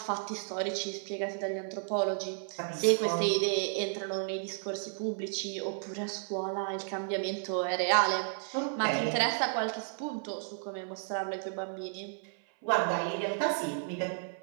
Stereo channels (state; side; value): silent; left; 56 dB below the other